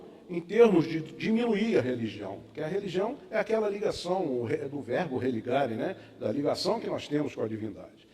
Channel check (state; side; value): identical; both; correlation 1.00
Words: em termos de diminuir a religião, porque a religião é aquela ligação do verbo religare, né? Da ligação que nós temos com a divindade.